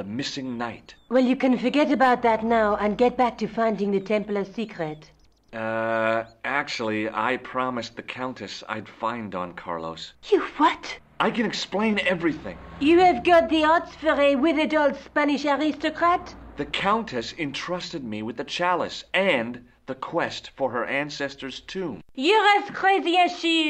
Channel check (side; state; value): both; identical; correlation 1.00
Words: missing knight. Well, you can forget about that now and get back to finding the Templars' secret. Actually, I promised the Countess I'd find Don Carlos. You what? I can explain everything. You have got the odds for a withered old Spanish aristocrat? The Countess entrusted me with the chalice and the quest for her ancestor's tomb. You're as crazy as